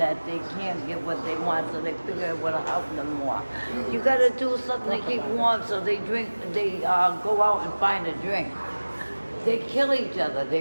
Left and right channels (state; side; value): inverted; both; correlation -1.00